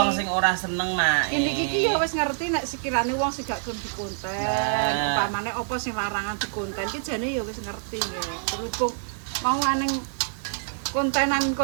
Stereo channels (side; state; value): left; silent; digital silence